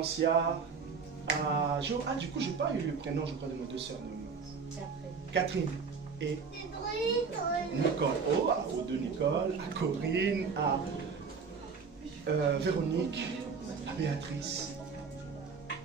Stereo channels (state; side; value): quieter; left; 5.4 dB